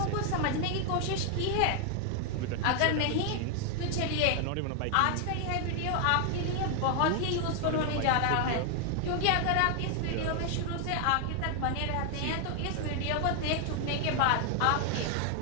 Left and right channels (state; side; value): different; both; correlation 0.00